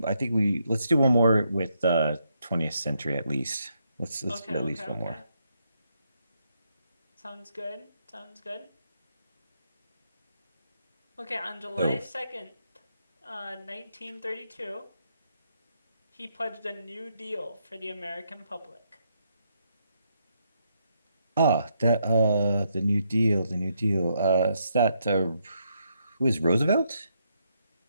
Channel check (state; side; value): inverted; both; correlation -0.77